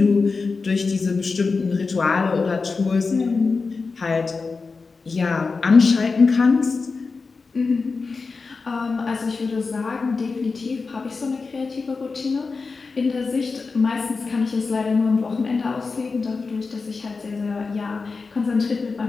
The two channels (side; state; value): right; quieter; 4.4 dB